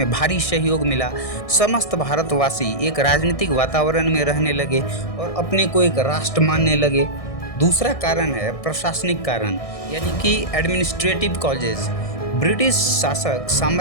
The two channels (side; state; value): right; late; 1.6 ms